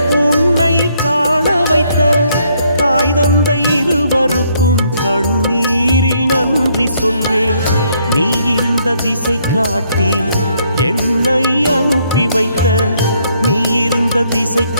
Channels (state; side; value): inverted; both; correlation -0.70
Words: உன்னை காண வைத்த தாய் தந்தை இருவருக்கும் கண்ணீரில் நன்றி சொல்வேன். நீ இருந்த திசை காட்டி என்னை அனுப்பி வைத்த, நீ இருந்த திசை